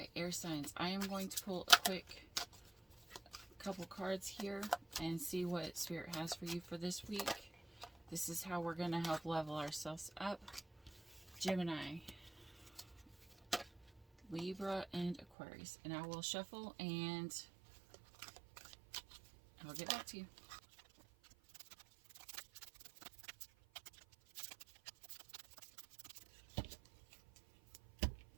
Okay, air signs. I am going to pull a quick couple cards here and see what Spirit has for you for this week. This is how we're going to help level ourselves up. Gemini, Libra, and Aquarius. And I will shuffle and I'll get back to you.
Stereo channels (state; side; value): drops out; left; at 15.2 s